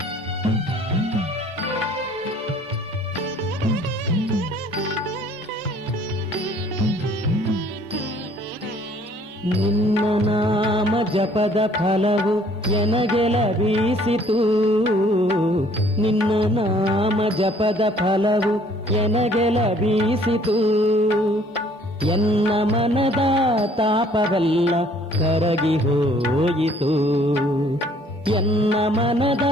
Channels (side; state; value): both; normal; correlation 0.58